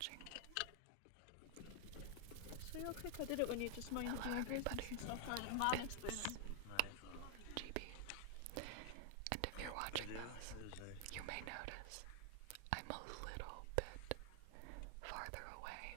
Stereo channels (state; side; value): different; both; correlation 0.00